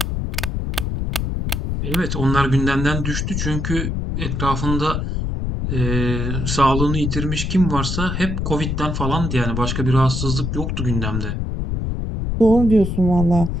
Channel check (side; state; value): left; noise; rumble, 2 dB below the sound